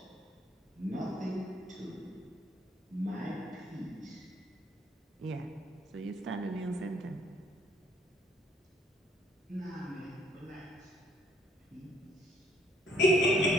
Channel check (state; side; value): normal; both; correlation 0.65